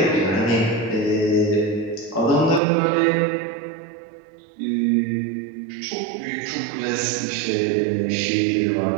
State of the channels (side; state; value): left; drops out; at 2.6 s